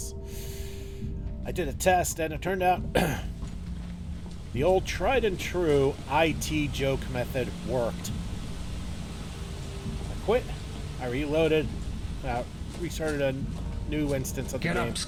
I did a test, and it turned out the old tried-and-true IT joke method worked. I quit, I reloaded, restarted a new instance of the game. Get up,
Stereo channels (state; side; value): identical; both; correlation 1.00